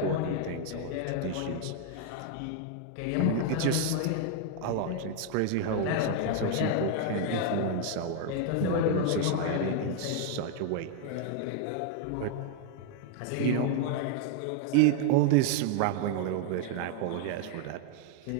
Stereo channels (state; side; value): different; both; correlation 0.00